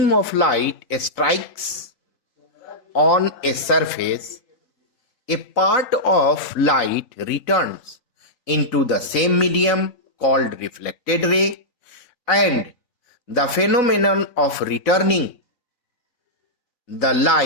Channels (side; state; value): right; late; 3.6 ms